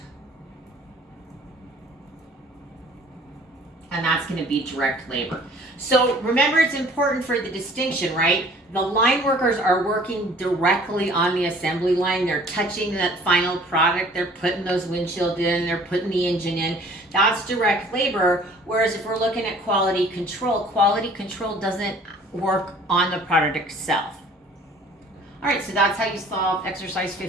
And that's going to be direct labor. So remember, it's important for the distinction, right? The line workers are working directly on the assembly line. They're touching that final product. They're putting those windshields in. They're putting the engine in. That's direct labor. Whereas if we're looking at quality control doesn't work on the product itself. All right, so that's how you solve exercise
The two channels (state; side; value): normal; both; correlation 0.52